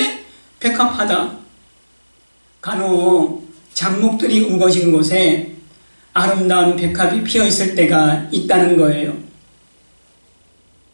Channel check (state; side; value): inverted; both; correlation -1.00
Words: 백합화다. 간혹 잡목들이 우거진 곳에 아름다운 백합이 피어있을 때가 있다는 거예요.